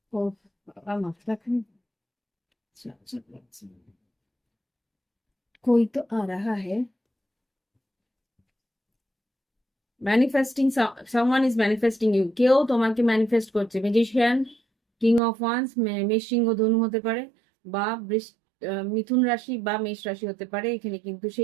ও বাবা, মাথা খান, कोई तो आ रहा है। Manifesting, someone is manifesting you, কেউ তোমাকে ম্যানিফেস্ট করছে। ম্যাজিশিয়ান, কিং অফ ওয়ান্স, মেষ সিংহ ধনু হতে পারে, বা মিথুন রাশি বা মেষ রাশি হতে পারে। এখানে কিন্তু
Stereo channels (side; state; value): left; drops out; at 15.2 s